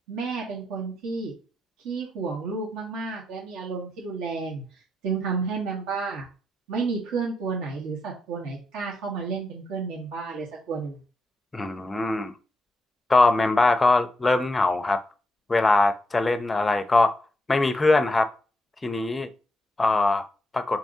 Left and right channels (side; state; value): both; normal; correlation 0.84